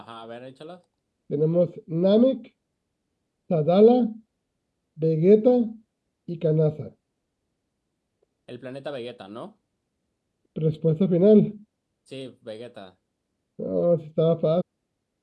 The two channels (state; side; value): identical; both; correlation 1.00